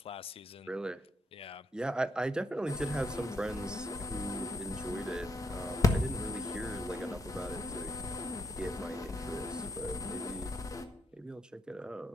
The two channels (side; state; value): both; normal; correlation 0.77